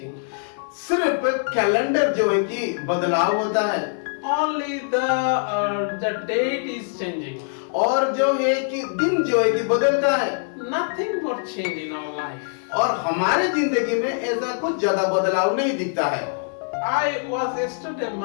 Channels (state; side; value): silent; right; 63 dB below the other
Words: सिर्फ कैलेंडर जो है कि बदलाव होता है Only the date is changing. और जो है कि दिन जो है कि बदलता है Nothing more change in our life. और हमारे जिंदगी में ऐसा कुछ ज्यादा बदलाव नहीं दिखता है। I was yesterday